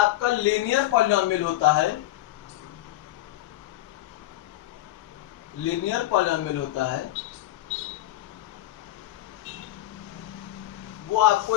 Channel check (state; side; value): quieter; right; 15.7 dB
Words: लीनियर पॉलिनोमियल होता है, लीनियर पॉलिनोमियल होता है, वो